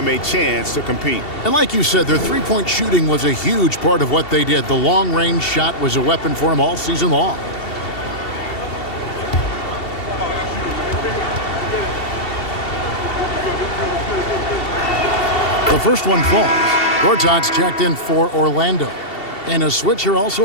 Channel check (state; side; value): late; right; 2.7 ms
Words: a chance to compete. And like you said, their three-point shooting was a huge part of what they did. The long-range shot was a weapon for them all season long. The first one falls. Gortat's checked in for Orlando. And a switch here